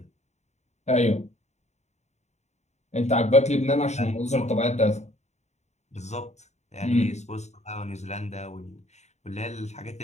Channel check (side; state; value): right; late; 0.33 ms